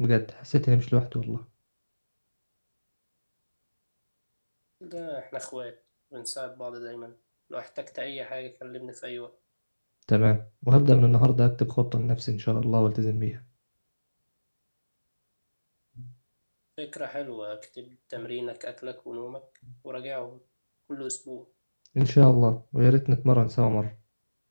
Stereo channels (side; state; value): both; inverted; correlation -1.00